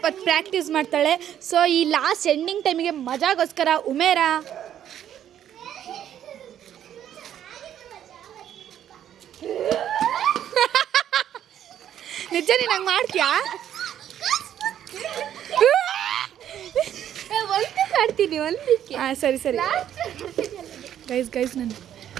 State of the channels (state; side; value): quieter; left; 10.5 dB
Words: ಪ್ರಾಕ್ಟೀಸ್ ಮಾಡ್ತಾಳೆ. ಸೊ ಈ ಲಾಸ್ಟ್ ಎಂಡಿಂಗ್ ಟೈಮಿಗೆ ಮಜಾಗೋಸ್ಕರ ಉಮೇರಾ ನಿಜ ನೀನು ಹಂಗೆ ಮಾಡ್ತೀಯಾ? ಆಡ್ತೀನಿ ಒಂದಕ್ಕೆ. ಹಾಂ ಸರಿ ಗೈಸ್ ನಾನು